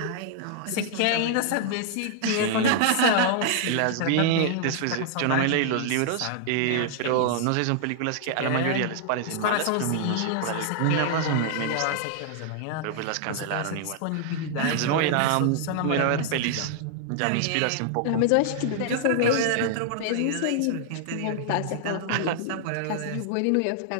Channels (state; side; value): different; both; correlation -0.01